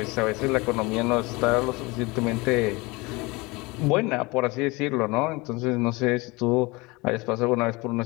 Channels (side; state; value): right; quieter; 24.5 dB